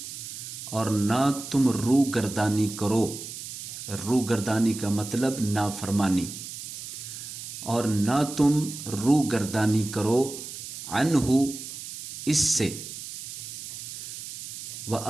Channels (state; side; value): noise; right; hiss, 10 dB below the sound